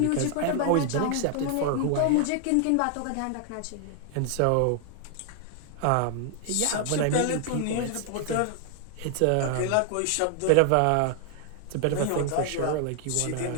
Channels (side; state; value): both; different; correlation 0.00